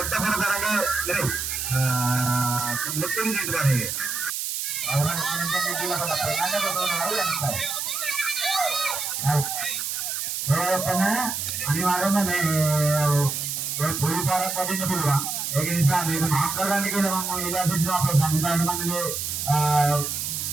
కూడా తరగ ముట్టింది తీసుకోవాలి అనివార్యంగా పోలీపాల పట్టిన పిలువ మీకు మాట్లాడడానికి ఇలా సంఘాల మంది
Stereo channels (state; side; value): noise; right; hiss, 3 dB below the sound